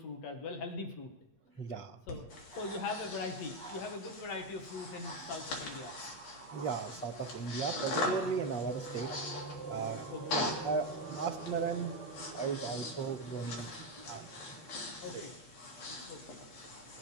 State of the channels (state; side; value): late; right; 8.5 ms